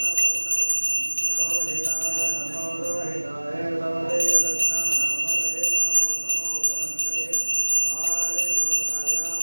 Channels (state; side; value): inverted; both; correlation -1.00